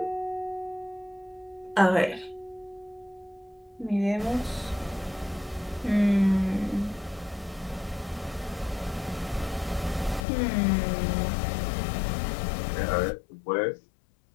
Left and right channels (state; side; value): drops out; right; at 10.2 s